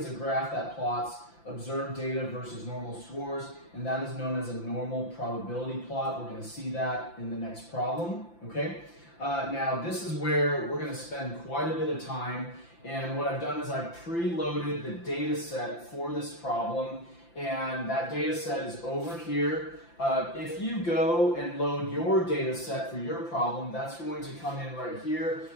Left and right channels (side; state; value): right; late; 5.9 ms